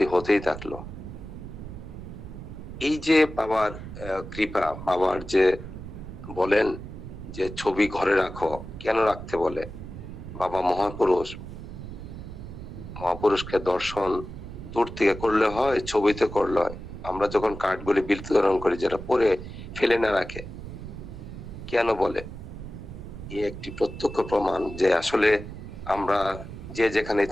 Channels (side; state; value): right; noise; rumble, 11 dB below the sound